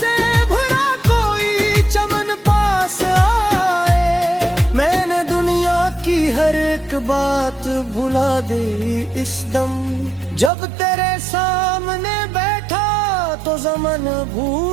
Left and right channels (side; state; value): left; drops out; at 10.5 s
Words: भरा कोई चमन पास आए। मैंने रुला दी इस दम। जब तेरे सामने बैठा तो ज़मन